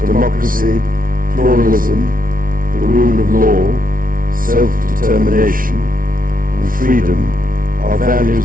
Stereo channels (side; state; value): left; late; 0.40 ms